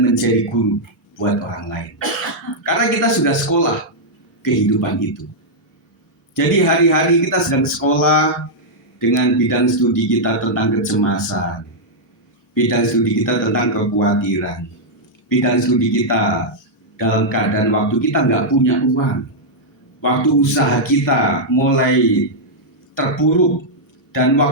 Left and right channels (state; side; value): normal; both; correlation -0.06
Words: menjadi guru buat orang lain. Karena kita sudah sekolah kehidupan itu. Jadi hari-hari kita sedang sekolah, dengan bidang studi kita tentang kecemasan, bidang studi kita tentang kekhawatiran, bidang studi kita dalam keadaan waktu kita nggak punya uang, waktu usaha kita mulai terpuruk, dan